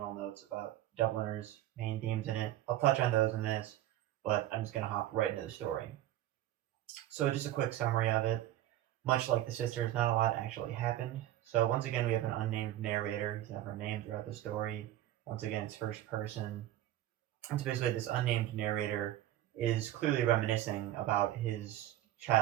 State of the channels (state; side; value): quieter; left; 13.7 dB